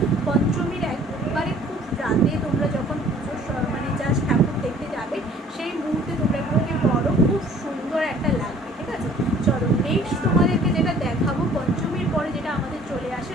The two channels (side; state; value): both; normal; correlation 0.54